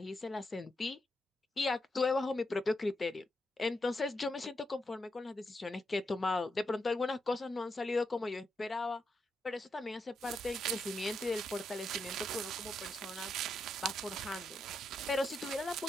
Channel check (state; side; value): normal; both; correlation 0.83